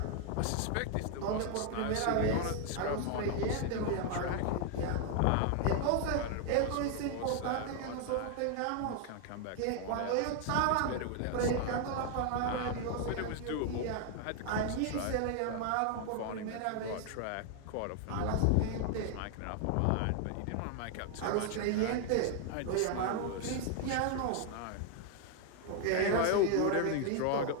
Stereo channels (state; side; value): different; both; correlation 0.00